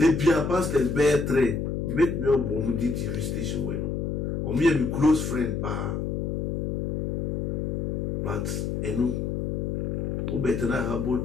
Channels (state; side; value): noise; left; hum, 1 dB below the sound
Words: bia pastors be 3 make me obom di TV station we no omo ye me close friend pa but enu o betena